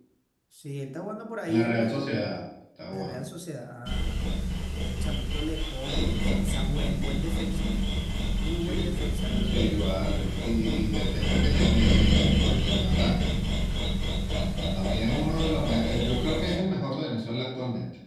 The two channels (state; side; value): identical; both; correlation 1.00